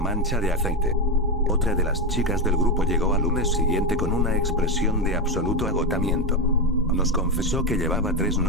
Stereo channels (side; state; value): both; normal; correlation 0.12